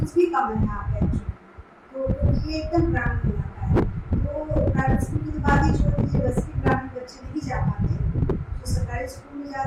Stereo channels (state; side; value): identical; both; correlation 1.00